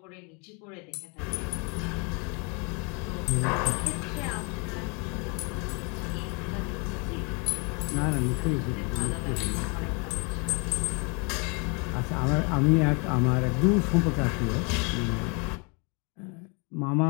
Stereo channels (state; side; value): quieter; right; 33.2 dB